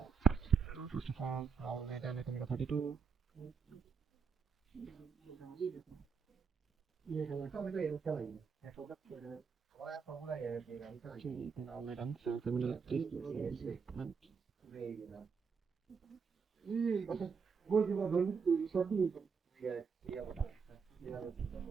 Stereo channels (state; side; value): quieter; left; 5.6 dB